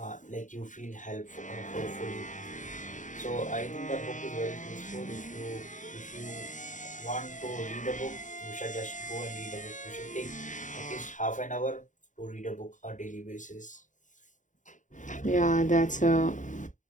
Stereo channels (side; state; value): right; late; 0.36 ms